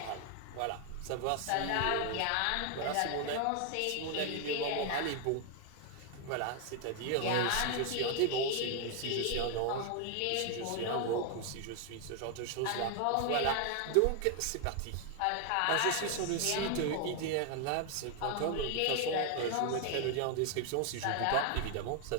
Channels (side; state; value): both; different; correlation 0.00